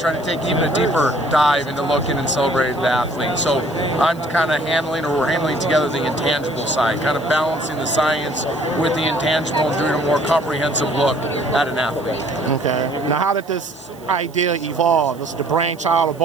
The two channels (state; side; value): noise; right; hiss, 26 dB below the sound